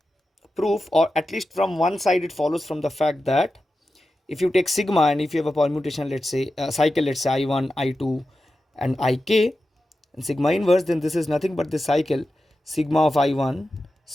or at least from one side, it follows from the fact that if you take sigma and if you have a permutation, let's say a cycle, let's say I1, I2 and Ik, and sigma inverse, then this is nothing but the cycle sigma of I1,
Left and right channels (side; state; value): both; normal; correlation 0.92